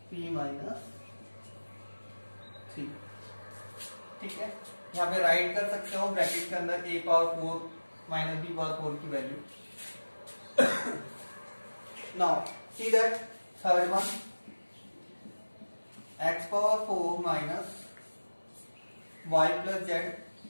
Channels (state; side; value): inverted; both; correlation -1.00